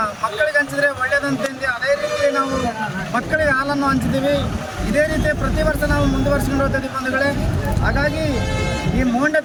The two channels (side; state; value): both; identical; correlation 1.00